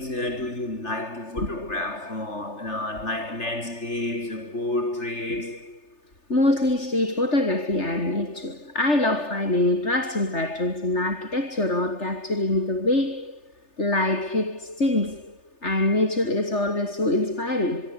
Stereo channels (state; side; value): late; right; 3.3 ms